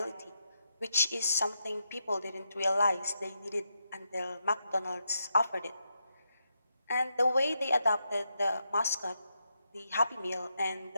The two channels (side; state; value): both; inverted; correlation -0.83